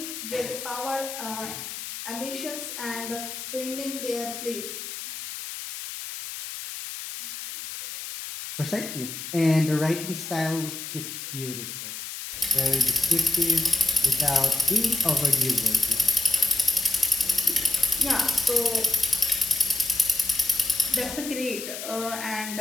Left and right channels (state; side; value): noise; left; hiss, 8 dB below the sound